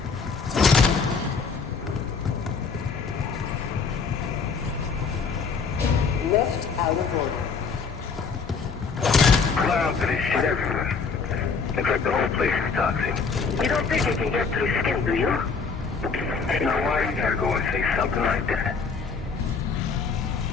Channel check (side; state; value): right; quieter; 5.2 dB